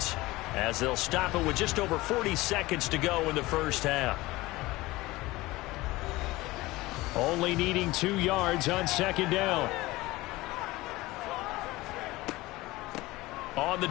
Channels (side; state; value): right; quieter; 19.7 dB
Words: as they'll stop it with just over 40 seconds to go in the first half. Only needing 2 yards on second down. On the